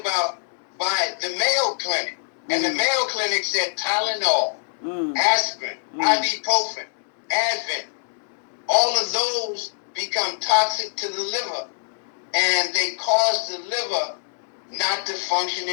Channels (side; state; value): right; silent; 63 dB below the other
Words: by the Mayo Clinic. And the Mayo Clinic said Tylenol, aspirin, ibuprofen, Advil, all of those become toxic to the liver, and they cause the liver not to function